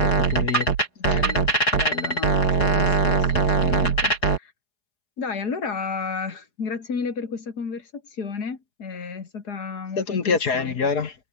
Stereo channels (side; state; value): right; late; 4.8 ms